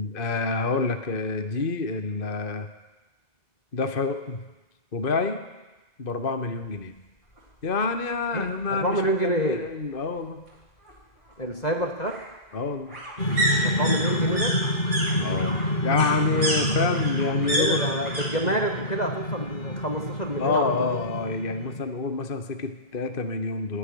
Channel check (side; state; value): right; late; 2.0 ms